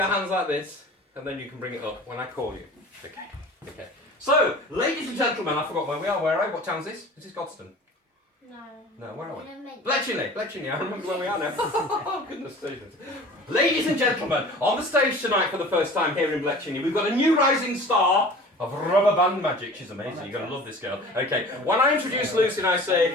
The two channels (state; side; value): normal; both; correlation 0.42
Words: hands like this, and then you can bring it up when I call you. Okay. Okay. So, ladies and gentlemen, I forgot where we are. Where are we? What town is this? Is this Godstone? No, where are we? Bletchley, I remember where we are now. Oh, goodness gracious. Ladies and gentlemen, on the stage tonight for the first time here in Bletchley, we've got a new rising star of rubber band magic. She's amazing. You're going to love this girl. Okay, when I introduce Lucy and I